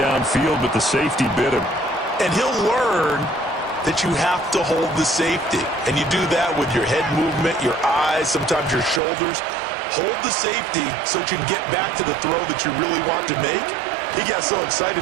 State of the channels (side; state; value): left; drops out; at 9.0 s